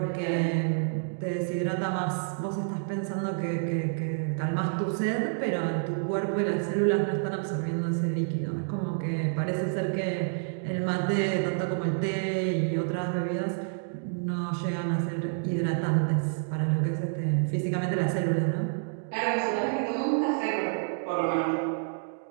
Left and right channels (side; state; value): left; silent; digital silence